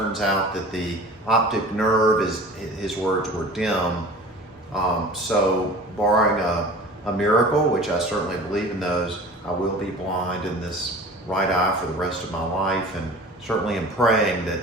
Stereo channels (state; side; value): normal; both; correlation 0.41